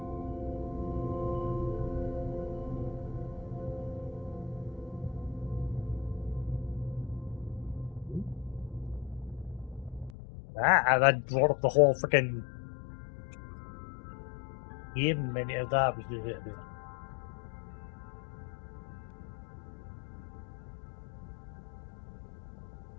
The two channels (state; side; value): drops out; right; at 10.1 s